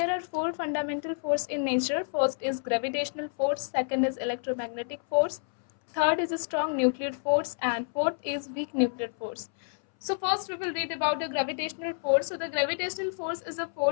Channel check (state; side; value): silent; right; 59 dB below the other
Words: are four fundamental force in nature. First is gravitational force, second is electromagnetic force, third is a strong nuclear force, and fourth is weak nuclear force. So first we will read about the gravitational force. So the gravitational force is a